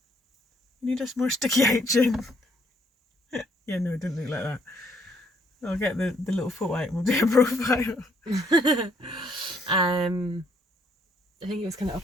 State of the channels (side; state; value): both; normal; correlation 0.68